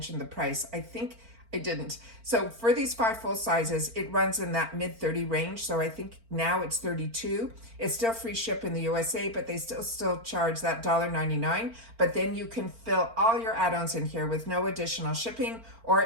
the price. I think I didn't. So for these 5 full sizes, it runs in that mid-30 range. So I think now it's 32. It's still free ship in the USA, but they still charge that $1.99. But then you can fill all your add-ons in here with no additional shipping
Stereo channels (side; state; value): left; late; 4.4 ms